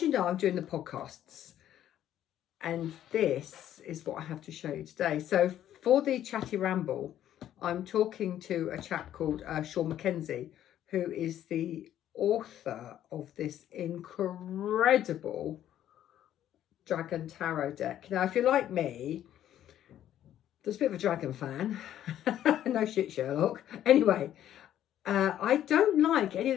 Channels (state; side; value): quieter; right; 11.5 dB